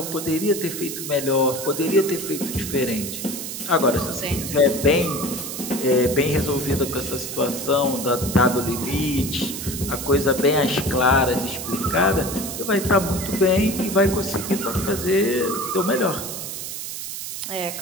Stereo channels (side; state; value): right; noise; hiss, 7 dB below the sound